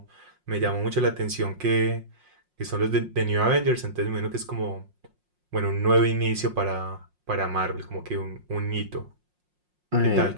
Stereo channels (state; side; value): late; left; 5.6 ms